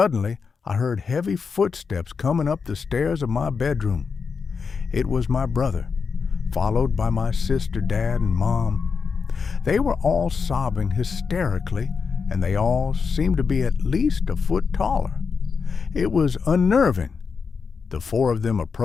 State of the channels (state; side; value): quieter; right; 5.5 dB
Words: I heard heavy footsteps coming up the stairs of my bedroom. It was my brother, followed by my sister, dad, and mom. They were all sobbing hysterically, and they all seemed to be at least a foot taller. It was unnerving. The 4 of them